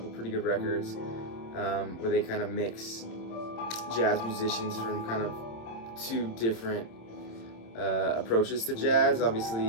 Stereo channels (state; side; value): late; right; 26 ms